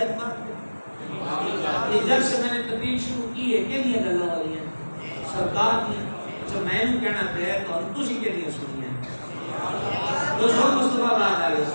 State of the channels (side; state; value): both; inverted; correlation -1.00